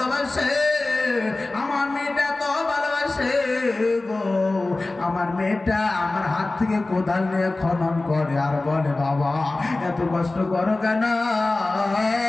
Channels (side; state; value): right; quieter; 3.1 dB